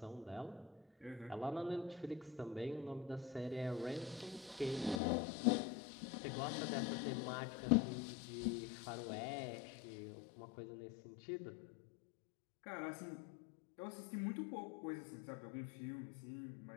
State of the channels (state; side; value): drops out; right; at 5.0 s